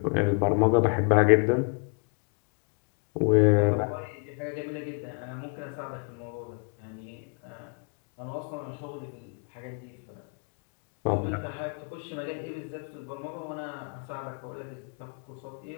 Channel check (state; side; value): quieter; right; 36.5 dB